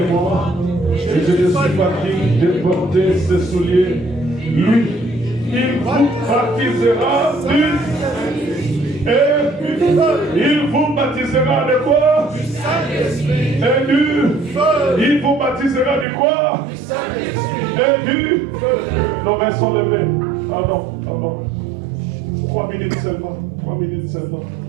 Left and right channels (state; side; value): drops out; left; at 16.1 s